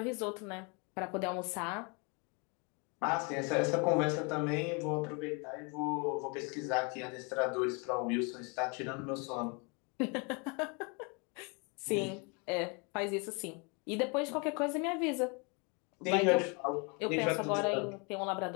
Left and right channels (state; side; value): quieter; right; 32.7 dB